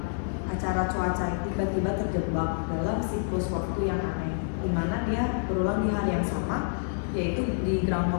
acara cuaca, tiba-tiba terjebak dalam siklus waktu yang aneh, dimana dia berulang di hari yang sama, yaitu di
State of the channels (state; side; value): silent; right; digital silence